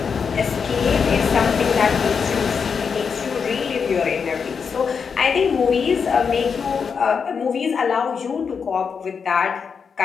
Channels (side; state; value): right; quieter; 6.1 dB